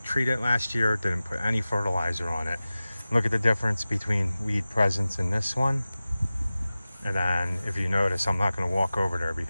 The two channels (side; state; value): both; inverted; correlation -0.96